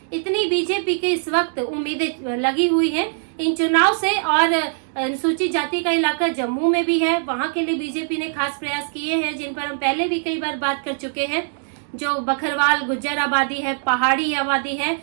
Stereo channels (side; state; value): left; silent; digital silence